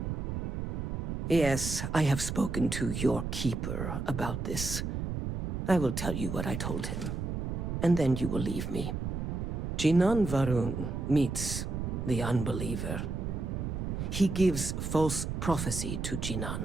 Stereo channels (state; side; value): noise; right; rumble, 3 dB below the sound